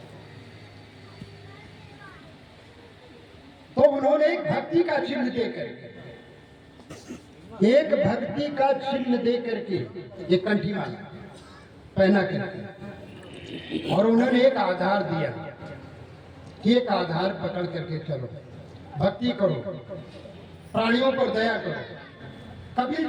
तो उन्होंने एक भक्ति का चिन्ह दे करके ये कंठी माला पहना करके, और उन्होंने एक आधार दिया कि एक आधार पकड़ करके चलो, भक्ति करो, प्राणियों पर दया करो। कबीर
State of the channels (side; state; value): both; identical; correlation 1.00